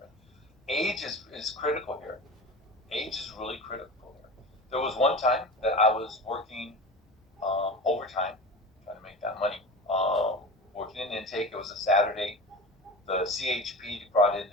Age is critical here. Age is really critical here. There was one time that I was working overtime, trying to make that money, working in intake. It was a Saturday. The CHP brought in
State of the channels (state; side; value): normal; both; correlation 0.31